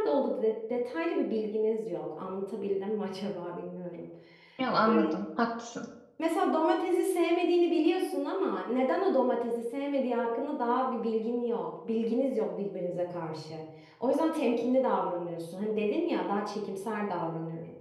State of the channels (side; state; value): both; identical; correlation 1.00